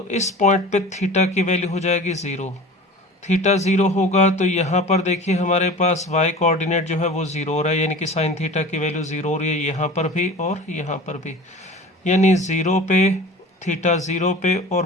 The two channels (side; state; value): both; normal; correlation 0.38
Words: इस पॉइंट पे थीटा की वैल्यू हो जाएगी 0। थीटा 0 होगा तो यहाँ पर देखिए हमारे पास y कोऑर्डिनेट जो है वो 0 हो रहा है, यानी कि साइन थीटा की वैल्यू 0 हो रही है यहाँ पर भी और यहाँ पर भी। यानी 0 पे, थीटा 0 पे और